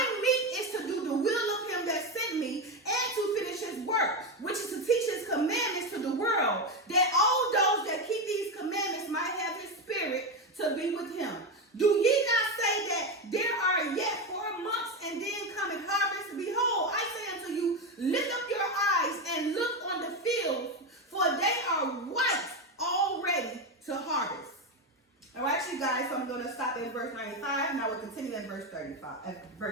meat is to do the will of him that sent me, and to finish his work, which is to teach his commandments to the world, that all those that keep these commandments might have his spirit to be with him. Do ye not say that there are yet 4 months, and then cometh harvest? Behold, I say unto you, lift up your eyes and look on the fields, for they are white already to harvest. All right, you guys, so I'm going to stop at verse 95. Now we'll continue at verse 35,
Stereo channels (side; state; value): both; normal; correlation 0.13